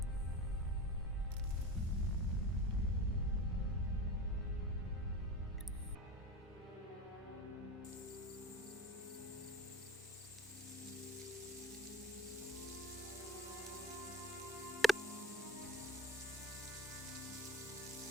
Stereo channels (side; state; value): both; normal; correlation 0.32